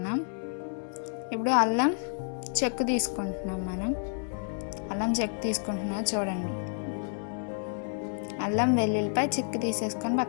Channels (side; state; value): right; silent; digital silence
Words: ఇప్పుడు అల్లం చెక్కు తీసుకుంటున్నాం. అల్లం చెక్కు తీసుకుంటున్నాం చూడండి. అల్లం, వెల్లుల్లిపాయ చెక్కు తీసేసుకొని